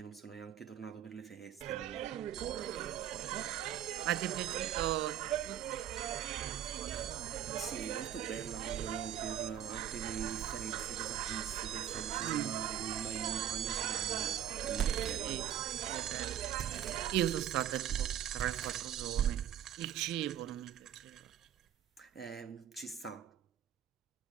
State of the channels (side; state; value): left; quieter; 10.4 dB